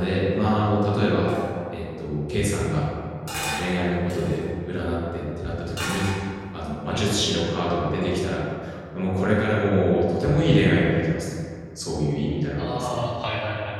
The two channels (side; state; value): both; identical; correlation 1.00